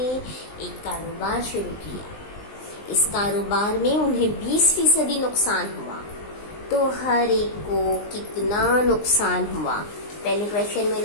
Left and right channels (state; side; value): late; right; 19 ms